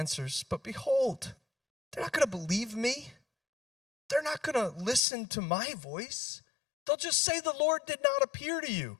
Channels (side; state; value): right; drops out; at 5.0 s